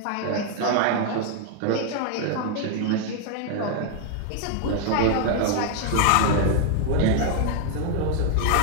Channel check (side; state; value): both; different; correlation 0.00